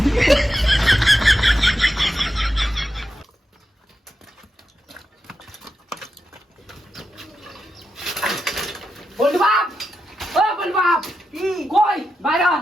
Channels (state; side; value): normal; both; correlation 0.88